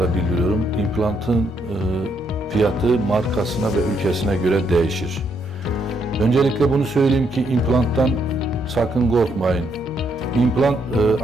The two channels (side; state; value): both; normal; correlation 0.75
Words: bildiriyorum. İmplantın fiyatı markasına ve ülkesine göre değişir. Öncelikle bunu söyleyeyim ki implanttan sakın korkmayın. İmplant